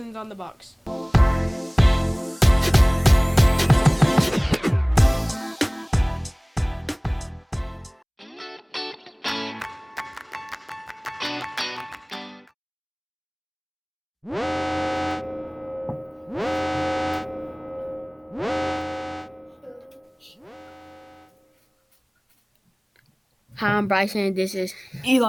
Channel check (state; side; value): identical; both; correlation 1.00